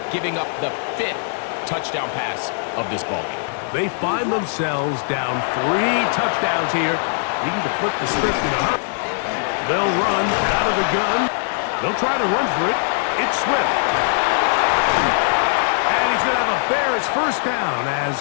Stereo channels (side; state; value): right; silent; digital silence